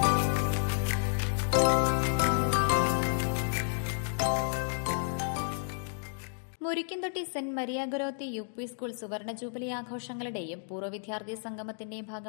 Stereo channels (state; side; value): silent; right; digital silence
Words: Murikkumthotti saint Maria Goretti UP school സുവർണ ജൂബിലി ആഘോഷങ്ങളുടെയും പൂർവ്വ വിദ്യാർത്ഥി സംഗമത്തിന്റെയും